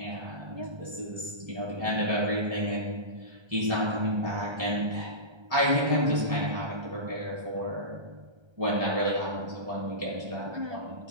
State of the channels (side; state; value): left; late; 1.3 ms